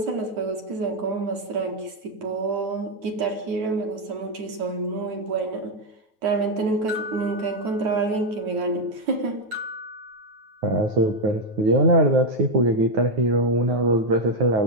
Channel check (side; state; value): left; late; 9.2 ms